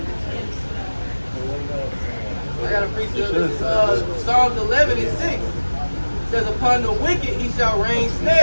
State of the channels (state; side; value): inverted; both; correlation -1.00